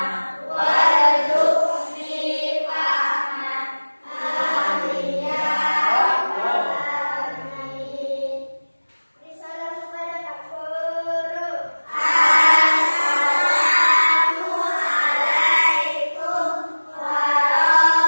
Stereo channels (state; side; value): inverted; both; correlation -1.00